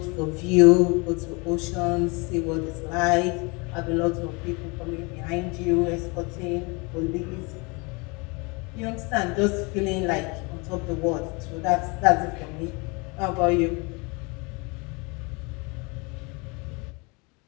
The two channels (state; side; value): quieter; right; 29.1 dB